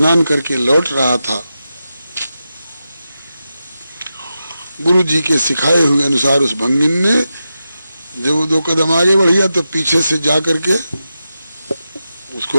करके लौट रहा था, गुरु जी के सिखाए हुए अनुसार उस भंगिन ने जब वो 2 कदम आगे बढ़िया तो पीछे से जा करके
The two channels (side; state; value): both; inverted; correlation -0.90